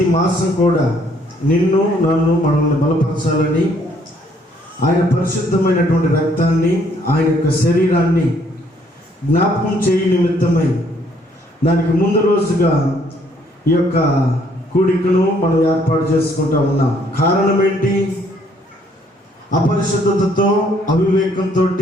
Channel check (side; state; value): both; normal; correlation 0.65